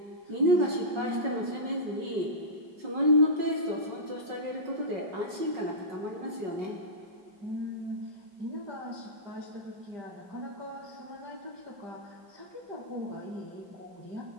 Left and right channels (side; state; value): left; late; 5.4 ms